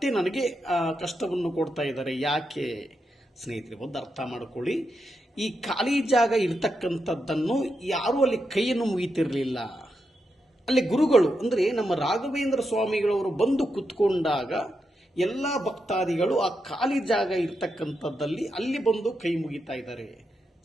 ನನಗೆ ಕಷ್ಟವನ್ನು ಕೊಡ್ತಾ ಇದ್ದಾರೆ ಯಾಕೆ? ಸ್ನೇಹಿತರೆ, ಒಂದು ಅರ್ಥ ಮಾಡಿಕೊಳ್ಳಿ, ಈ ಖಾಲಿ ಜಾಗ ಇರ್ತಕ್ಕಂಥದ್ದನ್ನು ಯಾರೂ ಅಲ್ಲಿ ಕೈಯನ್ನು ಮುಗಿತಿರಲಿಲ್ಲ. ಅಲ್ಲಿ ಗುರುಗಳು ಅಂದರೆ ನಮ್ಮ ರಾಘವೇಂದ್ರ ಸ್ವಾಮಿಗಳವರು ಬಂದು ಕುತ್ಕೊಂಡಾಗ ಎಲ್ಲ ಭಕ್ತಾದಿಗಳು ಆ ಖಾಲಿ ಜಾಗ ಇರ್ತಕ್ಕಂಥದ್ದಲ್ಲಿ ಅಲ್ಲಿ ಬಂದು ಕೈ ಮುಗಿತಾ ಇದ್ದಾರೆ.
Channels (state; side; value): normal; both; correlation 0.85